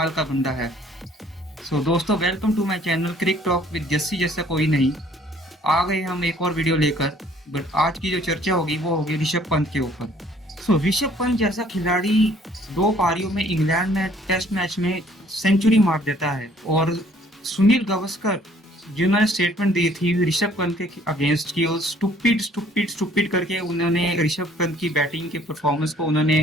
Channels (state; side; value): normal; both; correlation 0.59